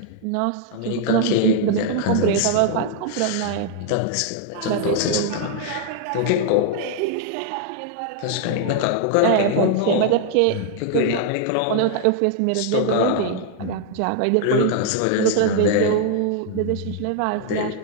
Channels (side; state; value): both; different; correlation -0.01